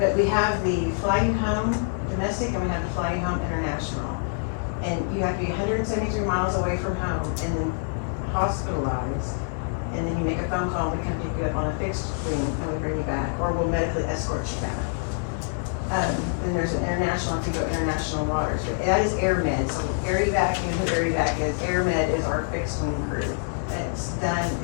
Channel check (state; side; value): silent; right; digital silence